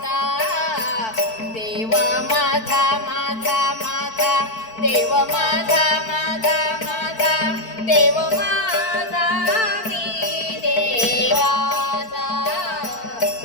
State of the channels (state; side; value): late; right; 4.5 ms